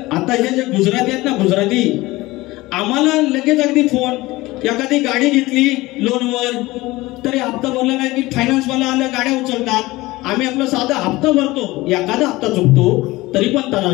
आता हे जे गुजराती आहेत ना, गुजराती, आम्हाला लगेच अगदी फोन. एखादी गाडी घेतली लोनवर तरी हप्ता भरला नाही की फायनान्स वाला आलं, गाड्या उचलतात. आम्ही आपला साधा हप्ता भरतो, एखादा हप्ता चुकतो तरी पण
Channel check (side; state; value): right; quieter; 19.8 dB